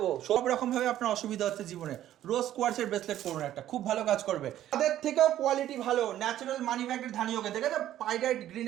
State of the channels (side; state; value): left; quieter; 12.4 dB